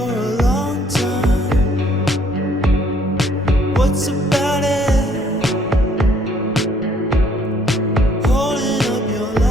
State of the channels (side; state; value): both; normal; correlation 0.63